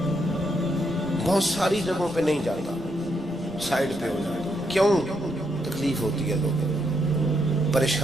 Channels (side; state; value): both; normal; correlation 0.78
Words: بہت ساری جگہوں پہ نہیں جاتا، سائڈ پہ ہو جاتا. کیوں؟ تکلیف ہوتی ہے، لوگوں کو